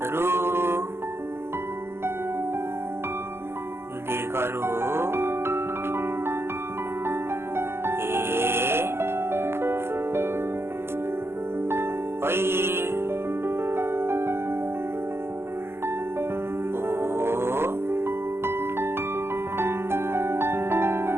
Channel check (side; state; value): left; late; 0.12 ms